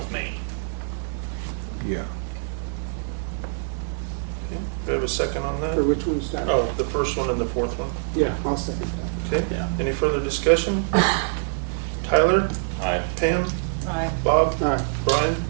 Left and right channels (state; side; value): silent; left; digital silence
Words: Main. Yeah. Okay. Do we have a second on that? for which one's that? Oh, the first one and the fourth one. Yeah, I'll second that. Okay. Yeah. Any further discussion? Tyler, Aye. Pam, Aye. Bob, Aye. Brian,